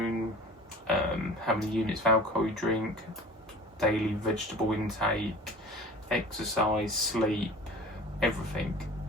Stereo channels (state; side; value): normal; both; correlation 0.41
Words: how many units of alcohol you drink, daily vegetable intake, exercise, sleep, everything.